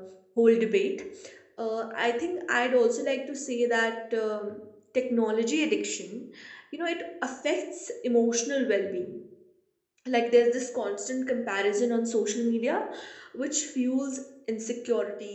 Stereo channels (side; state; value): both; identical; correlation 1.00